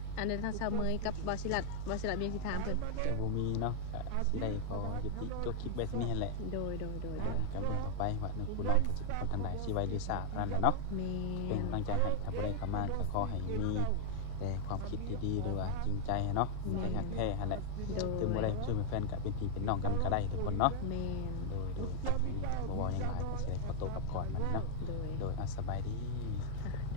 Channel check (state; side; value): different; both; correlation 0.00